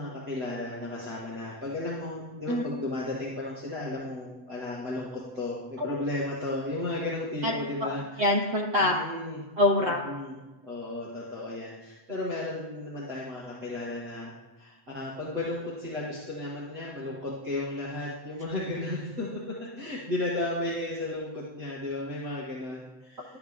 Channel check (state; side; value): late; left; 7.9 ms